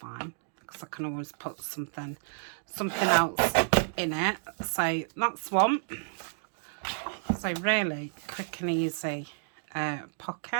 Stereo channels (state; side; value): silent; left; digital silence